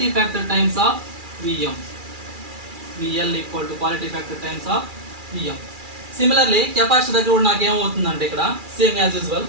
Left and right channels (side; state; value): left; late; 2.4 ms